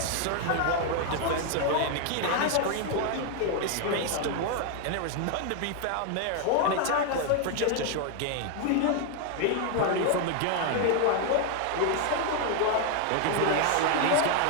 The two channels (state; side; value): different; both; correlation 0.00